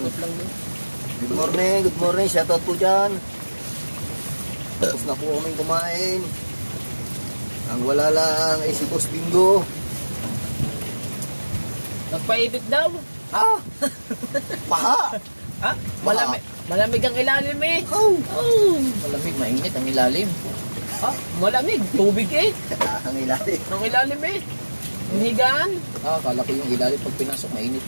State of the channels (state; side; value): inverted; both; correlation -1.00